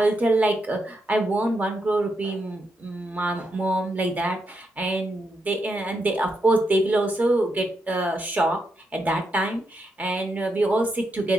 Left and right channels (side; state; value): both; normal; correlation 0.82